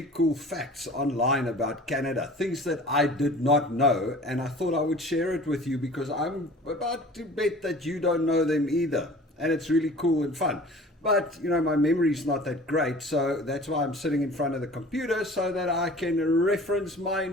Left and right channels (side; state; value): both; normal; correlation 0.44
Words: cool facts online about Canada, things that I did not know, and I thought I would share it with you because I'm about to bet that you don't know them either, and it's really cool and fun. But, you know, my memory's not that great, so that's why I'm sitting in front of the computer so that I can reference my